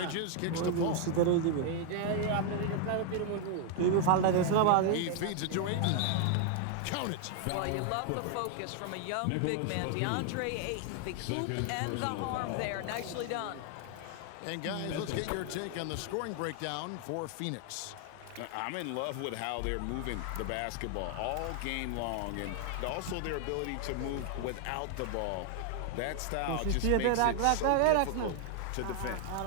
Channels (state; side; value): different; both; correlation 0.00